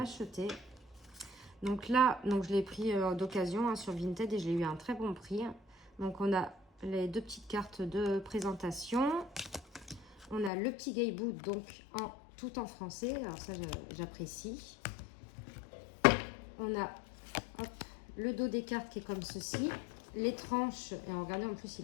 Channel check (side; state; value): right; drops out; at 10.5 s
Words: Donc là, je l'ai pris d'occasion sur Vinted et je l'ai eu à un très bon prix. Donc on a les deux petites cartes de présentation. On a le petit Gayboot, donc tout en français. Alors ça, j'apprécie. On a le dos des cartes qui est comme ceci. Les tranches, et regardez en plus, il